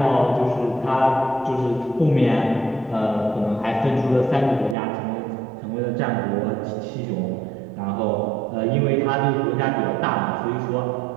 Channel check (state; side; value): drops out; left; at 4.8 s